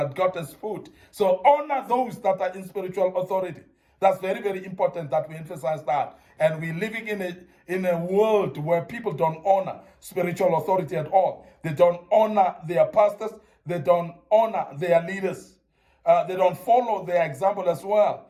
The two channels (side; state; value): both; identical; correlation 1.00